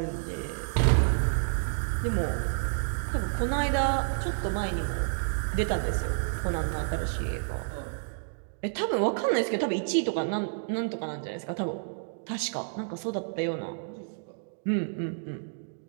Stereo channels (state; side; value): silent; left; digital silence